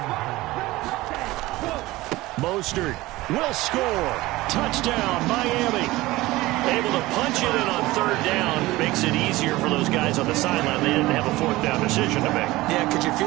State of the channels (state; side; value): quieter; left; 18.9 dB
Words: Mostert will score. Touchdown, Miami. Able to punch it in on 3rd down. Makes it easier for those guys on the sideline. They didn't have a 4th down decision to make. Yeah, could you